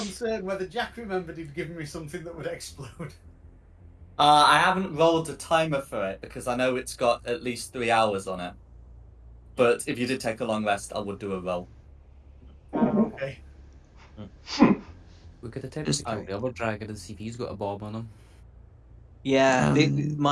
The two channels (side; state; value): both; identical; correlation 1.00